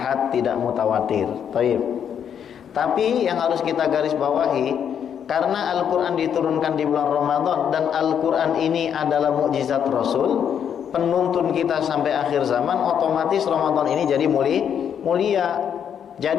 tidak mutawatir. Taib. Tapi yang harus kita garis bawahi, karena Al-Quran diturunkan di bulan Ramadan dan Al-Quran ini adalah mukjizat Rasul, penuntun kita sampai akhir zaman, otomatis Ramadan ini jadi mulia.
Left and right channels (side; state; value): right; quieter; 8.4 dB